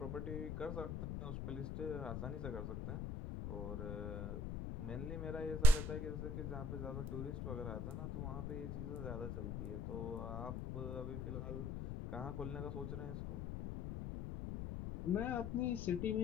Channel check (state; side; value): noise; left; rumble, 3 dB below the sound